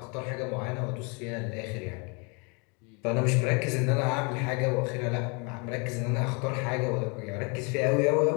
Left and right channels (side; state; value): right; quieter; 32.7 dB